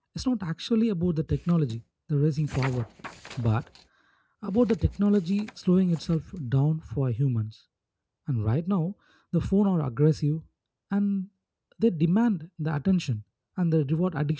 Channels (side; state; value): both; identical; correlation 1.00